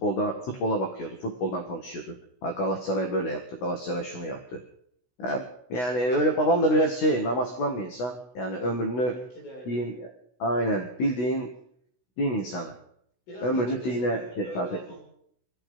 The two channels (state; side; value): late; right; 16 ms